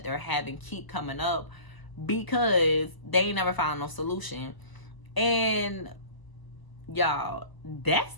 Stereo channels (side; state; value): right; late; 1.0 ms